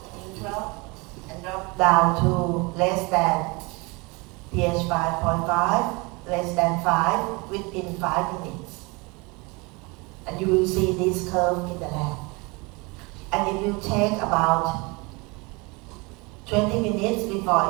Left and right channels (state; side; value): quieter; left; 27.1 dB